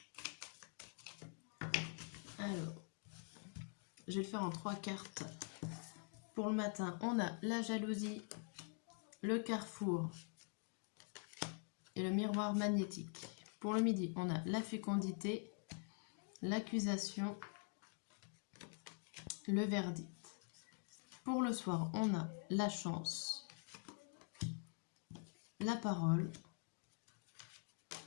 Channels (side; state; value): right; quieter; 39.7 dB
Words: Alors, je vais le faire en 3 cartes. Pour le matin, on a la jalousie, le carrefour et le miroir magnétique. Pour le midi, on a la fécondité, l'accusation, le verdict. Pour le soir, on a la chance, la parole